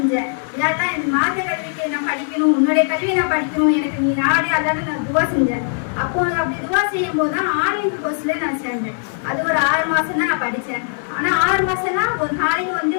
இல்லாதான் எனக்கு மார்க்க கல்விக்கு நான் படிக்கணும், உன்னுடைய கல்வியை நான் படிக்கணும், எனக்கு நீ நாடே அல்லாட்ட நான் துவா செஞ்சேன். அப்போ அப்படி துவா செய்யும் போது தான் ஆன்லைன் கோர்ஸ்ல நான் சேர்ந்தேன். அது ஒரு 6 மாசம் தான் நான் படித்தேன். ஆனால் 6 மாசம்னா ஒரு நாளைக்கு வந்து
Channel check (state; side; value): silent; right; digital silence